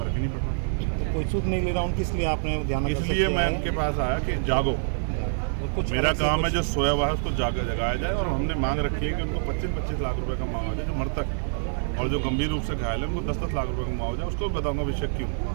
ही नहीं पड़ रहा। तो कोई सूद नहीं ले रहा उनकी, इसलिए आपने ध्यान, इसलिए मैं उनके पास आया कि जागो, मेरा काम है जो सोया हुआ है उसको जगाया जाए। और हमने मांग रखी है कि उनको 25-25 लाख रुपए का मुआवजा जो मृतक और जो गंभीर रूप से घायल है उनको 10-10 लाख रुपए का मुआवजा, उसको बताऊंगा विषय क्यों।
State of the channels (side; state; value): left; silent; digital silence